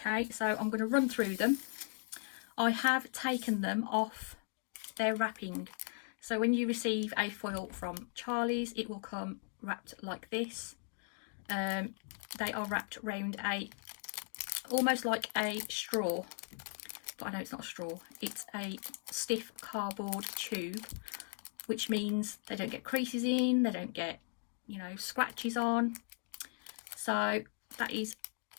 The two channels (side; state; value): right; silent; 53 dB below the other